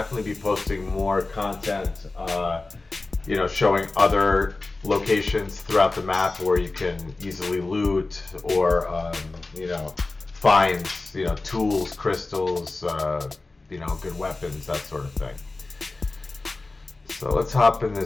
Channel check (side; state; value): right; quieter; 3.4 dB